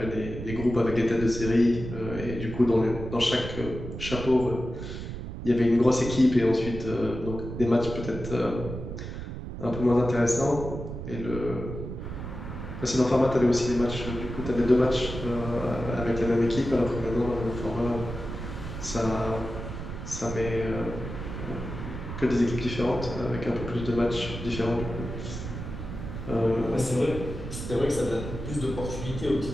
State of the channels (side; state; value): right; noise; rumble, 8 dB below the sound